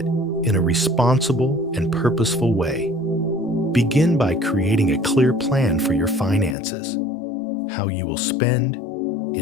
in a responsible and purposeful way. Begin by creating a clear plan for your finances, how you will spend,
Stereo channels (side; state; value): right; drops out; at 6.6 s